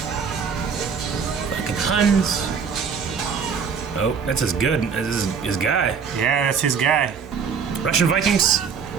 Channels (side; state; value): left; quieter; 6.2 dB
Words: Fucking Huns. Oh, that's as good as his guy. Yeah, that's his guy. Russian Vikings.